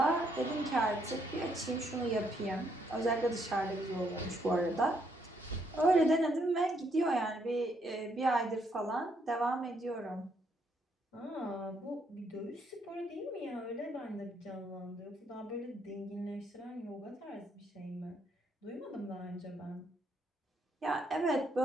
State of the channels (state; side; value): normal; both; correlation 0.73